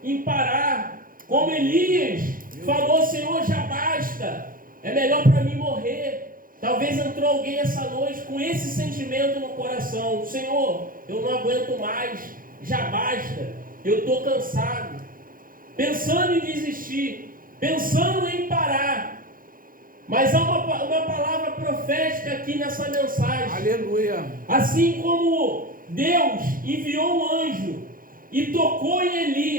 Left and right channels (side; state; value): left; late; 0.41 ms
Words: em parar, como Elias falou: Senhor, já basta, é melhor para mim morrer. Talvez entrou alguém essa noite com esse sentimento no coração: Senhor, eu não aguento mais, já basta, eu estou cansado. Pensando em desistir, pensando em parar. Mas há uma palavra profética aqui nessa mensagem. Aleluia. Assim como Deus enviou um anjo e tocou em